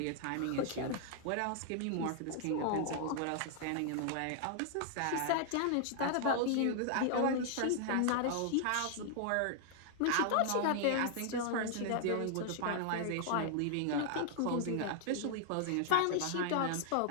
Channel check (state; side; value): different; both; correlation 0.00